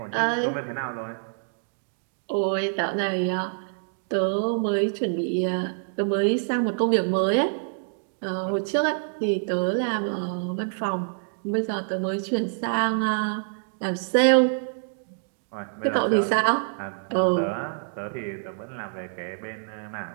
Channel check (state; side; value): silent; left; digital silence